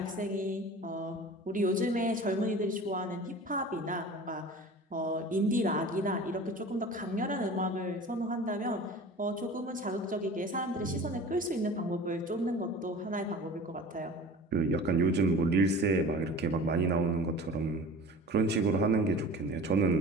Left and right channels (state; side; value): normal; both; correlation 0.39